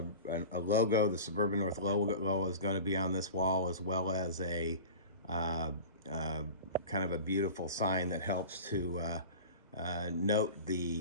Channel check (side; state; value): both; inverted; correlation -0.35